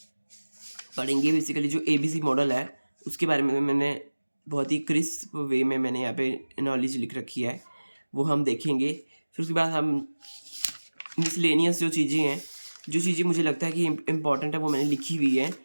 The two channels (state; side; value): inverted; both; correlation -1.00